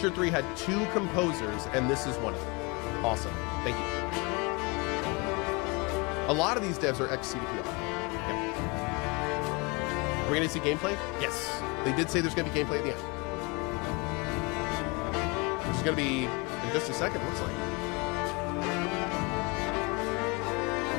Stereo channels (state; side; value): quieter; right; 28.6 dB